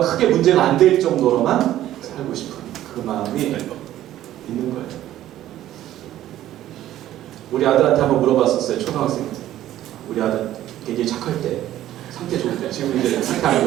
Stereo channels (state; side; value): quieter; left; 13.2 dB